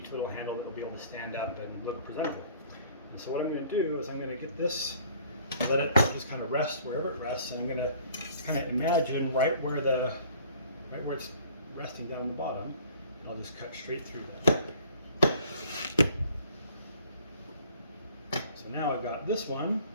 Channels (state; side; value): inverted; both; correlation -0.54